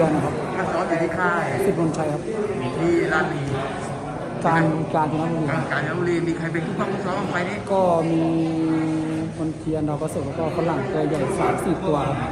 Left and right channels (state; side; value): identical; both; correlation 1.00